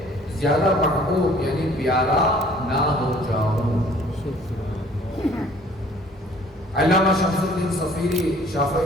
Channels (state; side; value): normal; both; correlation 0.55